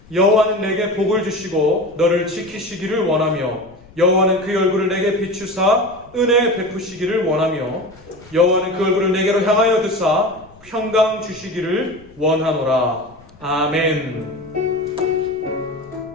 여호와는 내게 복을 주시고 너를 지키시기를 원하며 여호와는 그 얼굴을 내게 비추사 은혜 베푸시기를 원하며 여호와는 그 얼굴을 내게로 향하여 드사 평강 주시기를 원하노라. 아멘.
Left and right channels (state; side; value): noise; left; rumble, 25 dB below the sound